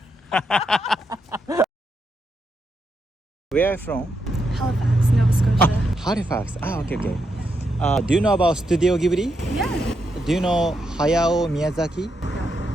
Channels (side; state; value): both; normal; correlation 0.82